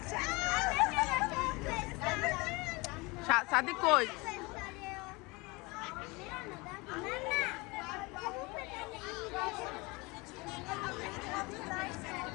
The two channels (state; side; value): quieter; right; 25.3 dB